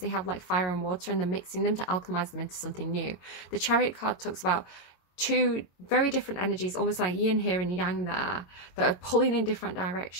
have like fire and water, and they're mixing them to alchemize them into something new. The Chariot card talks about two very different energies, almost like yin here and yang there, that are pulling in different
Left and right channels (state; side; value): late; right; 22 ms